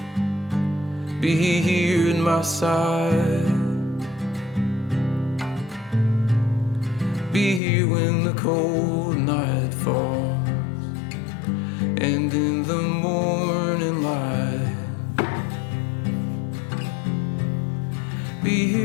be here at my side. Be here when the cold night falls and in the morning light. Be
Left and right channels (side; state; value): right; drops out; at 7.6 s